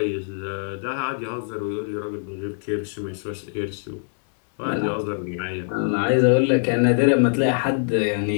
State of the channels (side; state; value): right; silent; digital silence